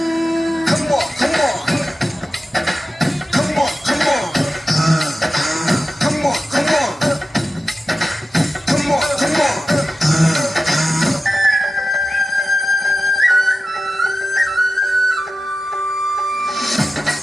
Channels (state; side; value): normal; both; correlation 0.93